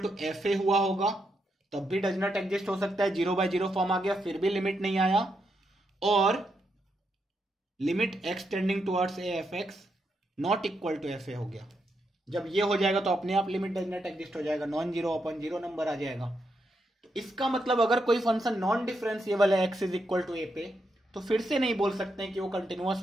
F a हुआ होगा, तब भी डज नॉट एग्जिस्ट हो सकता है, 0/0 फॉर्म आ गया फिर भी लिमिट नहीं आया, और limit x tending towards A F x not equal to F a हो गया। जब ये हो जाएगा तो अपने आप लिमिट डज नॉट एग्जिस्ट हो जाएगा, non zero upon zero number आ जाएगा। तो इसका मतलब अगर कोई फंक्शन नॉन डिफरेंशिएबल है x इज इक्वल टू ए पे, तो फिर से नहीं बोल सकते हैं कि वो कंटिन्यूअस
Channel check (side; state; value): both; normal; correlation 0.81